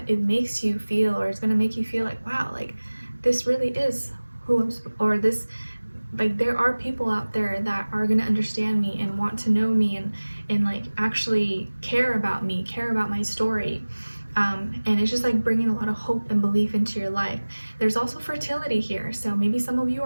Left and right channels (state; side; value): inverted; both; correlation -1.00